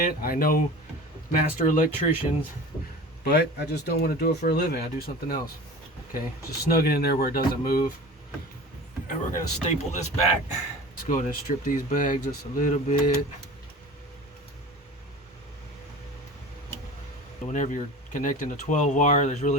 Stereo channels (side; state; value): both; normal; correlation 0.37